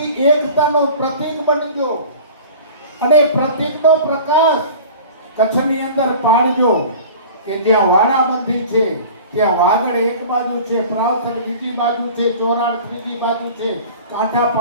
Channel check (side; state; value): both; inverted; correlation -0.41